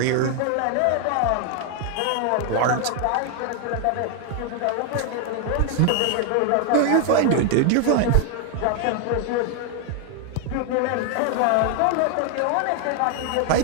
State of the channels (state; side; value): different; both; correlation 0.01